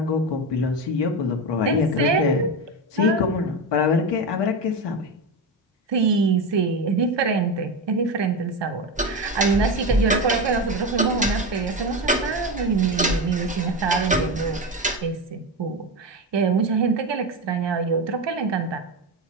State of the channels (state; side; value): normal; both; correlation 0.17